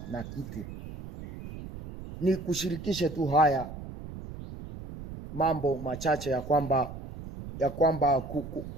na kitu. Ni kushirikishe tu haya mambo machache ya kwamba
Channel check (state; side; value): noise; right; rumble, 11 dB below the sound